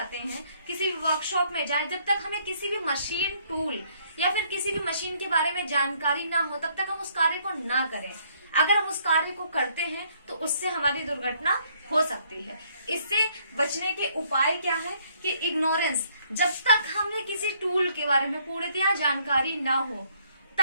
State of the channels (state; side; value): inverted; both; correlation -0.67